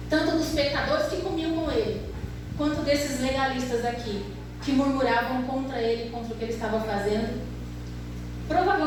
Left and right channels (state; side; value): identical; both; correlation 1.00